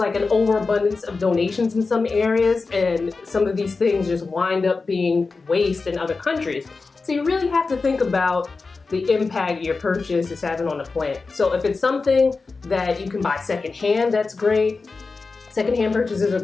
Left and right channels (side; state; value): right; quieter; 4.1 dB